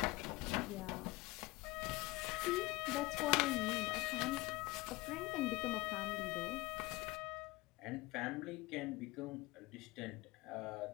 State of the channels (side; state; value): right; quieter; 21.6 dB